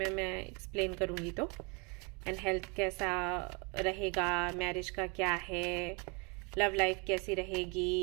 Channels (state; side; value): quieter; left; 31.5 dB